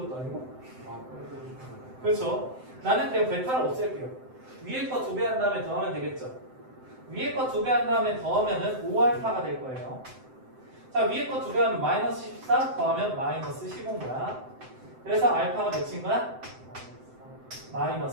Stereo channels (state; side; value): late; left; 7.8 ms